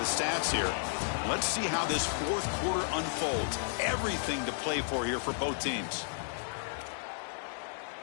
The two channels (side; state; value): right; silent; digital silence